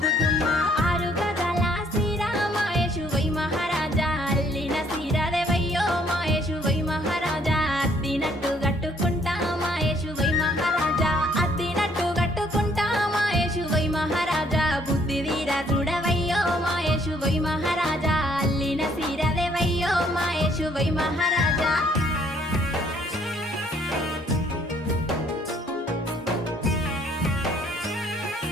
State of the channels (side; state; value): both; normal; correlation 0.64